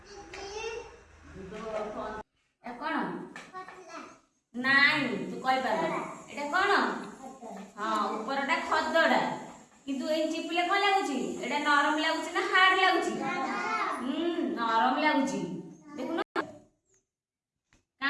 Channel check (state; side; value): identical; both; correlation 1.00